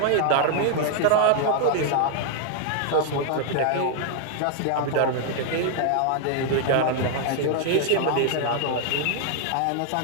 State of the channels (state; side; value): different; both; correlation 0.00